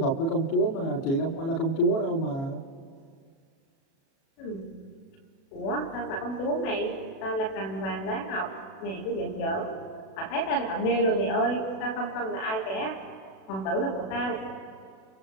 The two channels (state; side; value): late; right; 37 ms